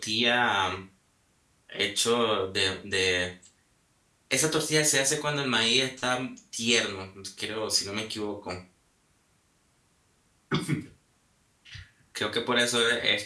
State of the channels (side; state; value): both; identical; correlation 1.00